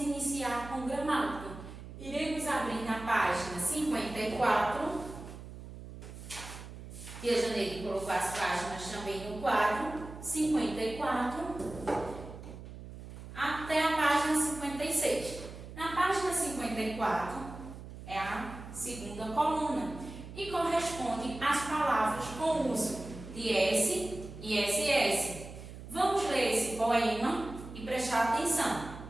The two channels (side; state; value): right; noise; hum, 13 dB below the sound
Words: com gramática. Iremos abrir na página 54. Tia Janeide colocou as páginas também no quadro 54 até a página 56. Na página 54 é a segunda coluna e corresponde às palavras com uso de S e SS. Vamos ler esse poema e prestar atenção.